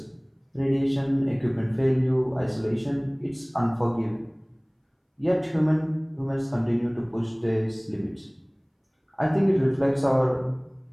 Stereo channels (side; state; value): both; identical; correlation 1.00